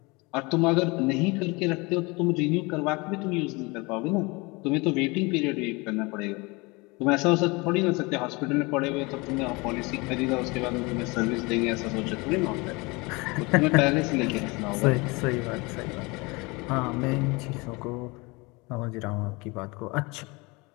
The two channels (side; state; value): right; quieter; 26.0 dB